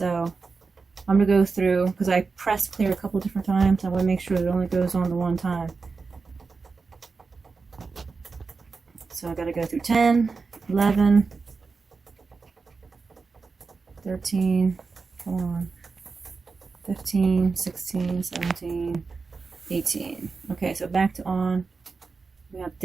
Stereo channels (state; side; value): quieter; left; 4.5 dB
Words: I'm going to go through, because I pressed clear a couple different times. I want to make sure it only goes on the one time. So I got to go through 10, 11, 13, come on, 15, 16, 17, 18. Okay, so back to on. We got